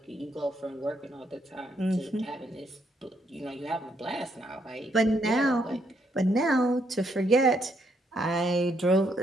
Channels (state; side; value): normal; both; correlation 0.74